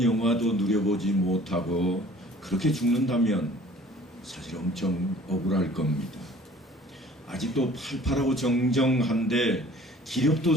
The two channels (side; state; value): both; normal; correlation 0.51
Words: 누려보지 못하고 그렇게 죽는다면 사실 엄청 억울할 겁니다. 아직도 팔팔하고 정정한데 기력도